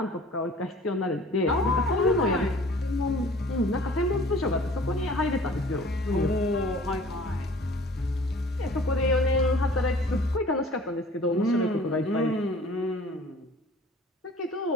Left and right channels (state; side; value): normal; both; correlation 0.49